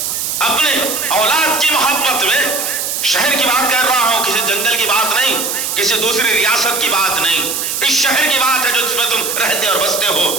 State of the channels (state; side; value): noise; right; hiss, 2 dB below the sound